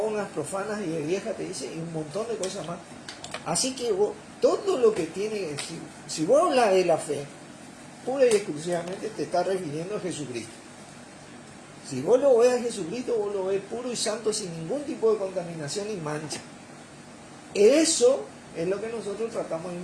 profanas y de vieja, te dice, y un montón de cosas más. Así que vos, todo lo que tiene, si vos hablas de la fe, pura y exclusivamente te está refiriendo a Jesucristo. Si vos lo ves a Jesucristo, vos lo ves puro y santo, sin ningún tipo de contaminación y mancha. Eso es lo que nosotros tratamos de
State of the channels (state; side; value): identical; both; correlation 1.00